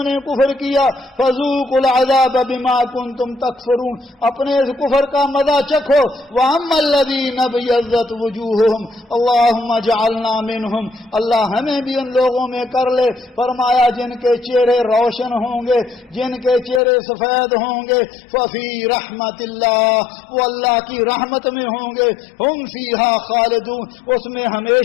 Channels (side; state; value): right; drops out; at 16.8 s